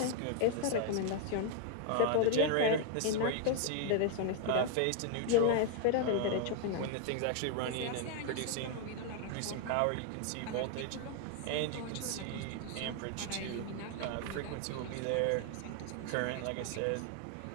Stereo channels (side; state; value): both; different; correlation 0.00